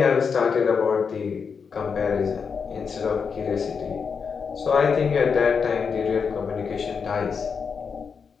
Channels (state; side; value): quieter; right; 5.9 dB